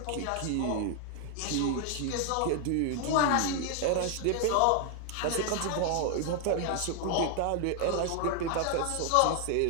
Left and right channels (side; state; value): both; different; correlation 0.00